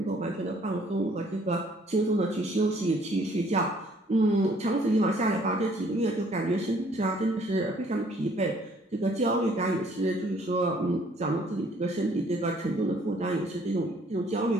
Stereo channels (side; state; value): both; normal; correlation 0.61